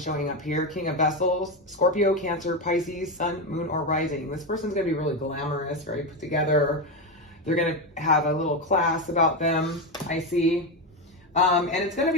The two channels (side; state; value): both; normal; correlation 0.12